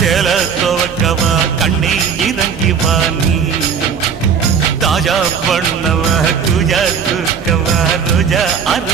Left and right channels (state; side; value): quieter; left; 6.7 dB